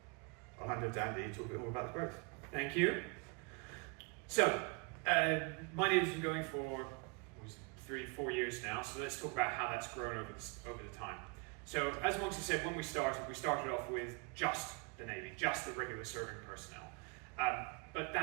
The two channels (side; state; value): left; quieter; 31.9 dB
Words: I'll hand over to Andy to talk a bit more about the growth. Thank you. So, MyNavy's been going for 3-4 years now, so let's talk about how that's grown over the time. So, as Moxie said, when we started off with just the Navy, just the regular serving personnel. But